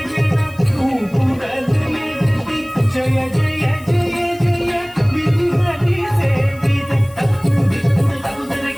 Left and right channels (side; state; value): left; noise; hiss, 25 dB below the sound